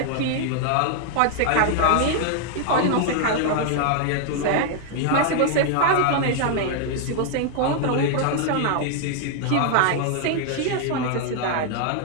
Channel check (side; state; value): both; different; correlation 0.00